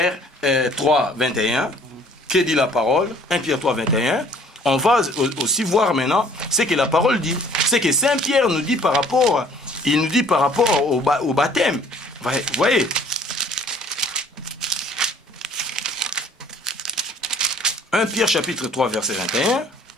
3, 21. Que dit la parole? 1 Pierre 3, 21. On va aussi voir maintenant ce que la parole dit. C'est que Saint Pierre nous dit par rapport, au baptême. Vous voyez? 1 Pierre chapitre 3, verset 21.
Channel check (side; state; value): both; normal; correlation 0.55